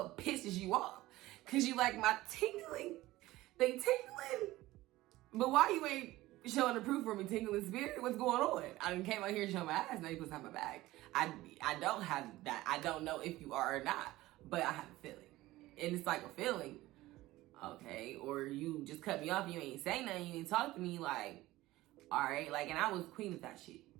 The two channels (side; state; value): left; quieter; 17.5 dB